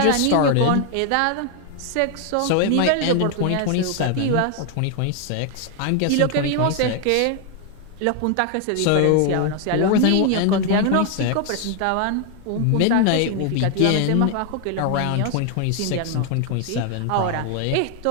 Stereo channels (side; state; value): both; different; correlation 0.00